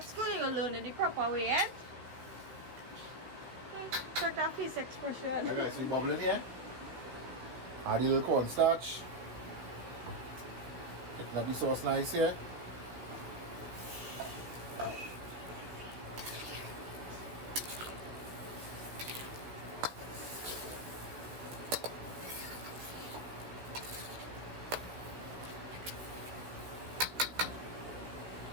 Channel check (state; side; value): late; left; 16 ms